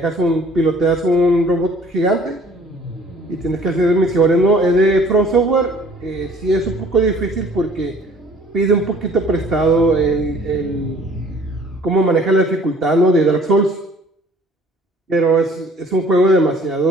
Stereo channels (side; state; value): both; normal; correlation 0.54